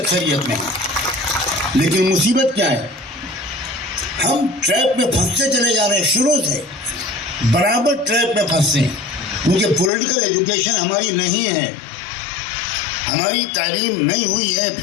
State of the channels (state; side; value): drops out; right; at 9.9 s